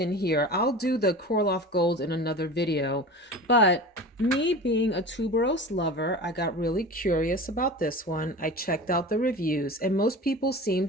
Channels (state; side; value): normal; both; correlation 0.34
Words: here. I'll do the KORLOFF Gold in another video, but me being a tuberose lover, I got really curious about this one. I checked out the reviews and most people